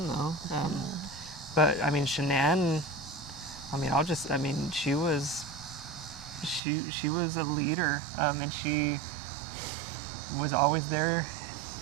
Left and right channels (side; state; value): left; drops out; at 6.6 s